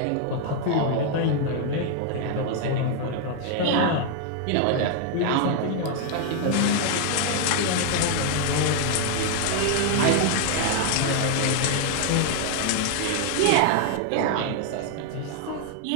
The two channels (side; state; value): both; different; correlation 0.00